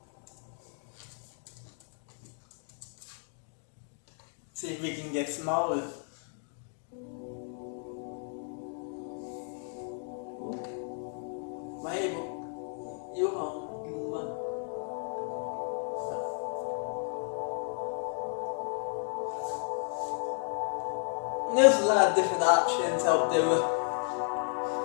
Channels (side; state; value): right; silent; 56 dB below the other